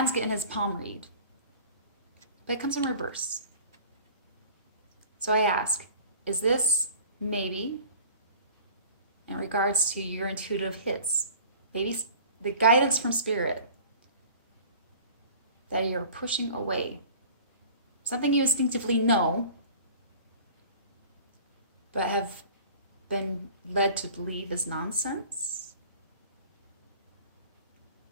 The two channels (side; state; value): both; inverted; correlation -0.44